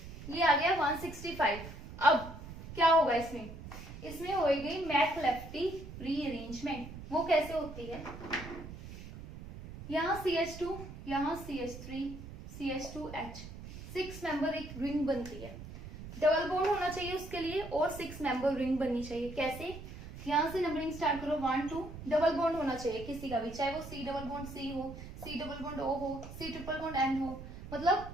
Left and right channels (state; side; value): noise; right; rumble, 12 dB below the sound